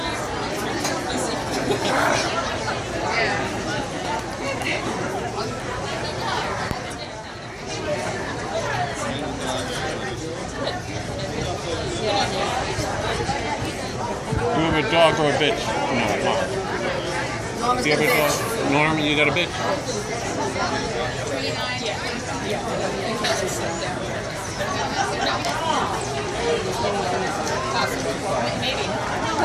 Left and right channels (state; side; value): identical; both; correlation 1.00